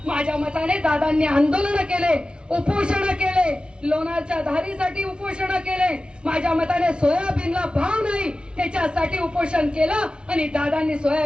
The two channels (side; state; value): left; late; 0.056 ms